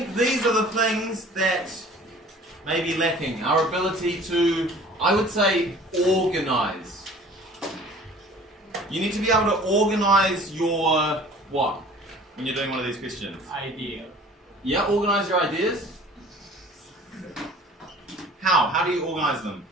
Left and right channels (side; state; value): both; normal; correlation 0.48